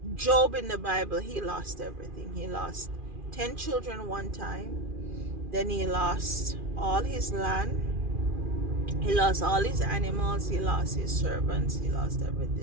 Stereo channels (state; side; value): late; left; 2.4 ms